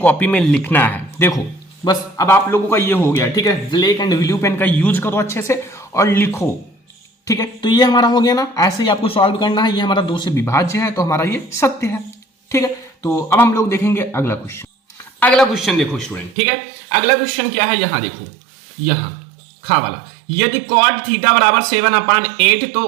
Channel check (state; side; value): drops out; left; at 16.4 s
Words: में लिखना है। देखो बस अब आप लोगों का ये हो गया, ठीक है, ब्लैक एंड ब्लू पेन का यूज करो अच्छे से और लिखो, ठीक है। तो ये हमारा हो गया ना, ऐसे ही आपको सॉल्व करना है, ये हमारा 2 से विभाज्य है, तो हमारा ये सत्य है, ठीक है। तो अब हम लोग देखेंगे अगला क्वेश्चन देखो स्टूडेंट, ठीक है, अगला क्वेश्चन क्या है, यहां देखो, यहां खा वाला, यदि cot थीटा बराबर 7/8 तो